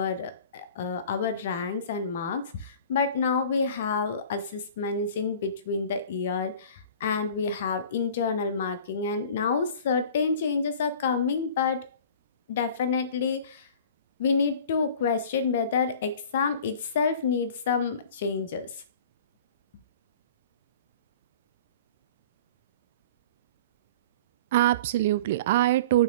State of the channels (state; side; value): inverted; both; correlation -0.43